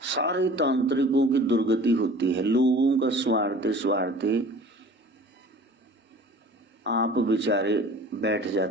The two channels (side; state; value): both; normal; correlation 0.44